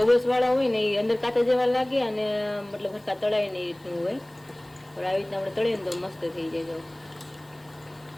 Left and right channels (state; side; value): noise; left; hiss, 30 dB below the sound